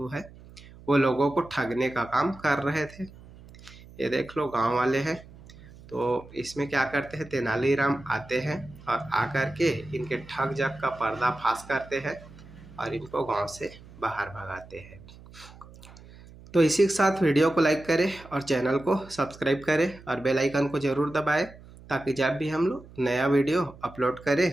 है वो लोगों को ठगने का काम कर रहे थे। ये देख लो गांव वाले हैं। तो इसमें क्या करते हैं, तेनालीराम आते हैं और आकर के इनके ठग जग का पर्दाफाश करते हैं और इनको गांव से बाहर भगाते हैं। तो इसी के साथ वीडियो को लाइक करें और चैनल को सब्सक्राइब करें और बेल आइकन को ज़रूर दबाएं ताकि जब भी हम लोग नया वीडियो अपलोड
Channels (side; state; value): right; noise; hum, 20 dB below the sound